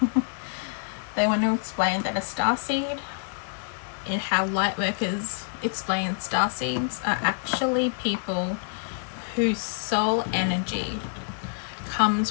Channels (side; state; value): right; silent; digital silence